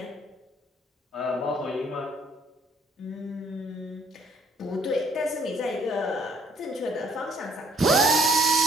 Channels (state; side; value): normal; both; correlation 0.64